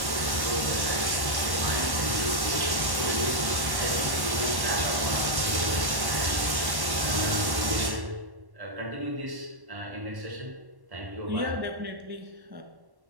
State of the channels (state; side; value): late; left; 1.1 ms